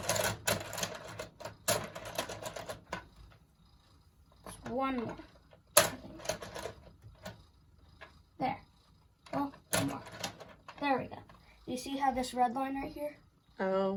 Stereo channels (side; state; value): both; identical; correlation 1.00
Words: Just one more, I think. There. Oh, one more. There we go. You see how this red line right here?